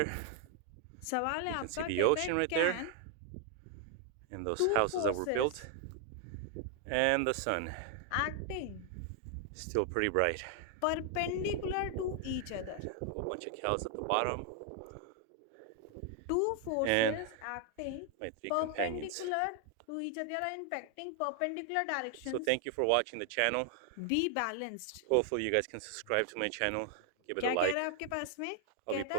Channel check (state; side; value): different; both; correlation 0.00